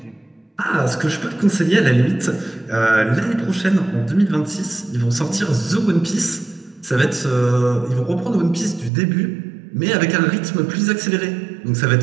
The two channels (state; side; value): drops out; left; at 8.9 s